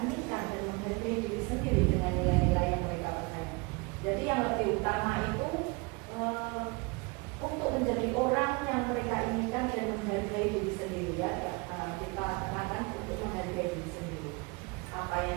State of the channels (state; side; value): quieter; left; 27.8 dB